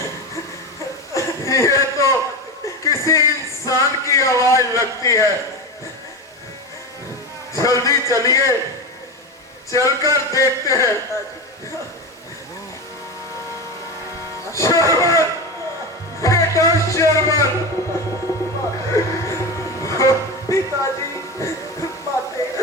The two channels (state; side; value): normal; both; correlation 0.21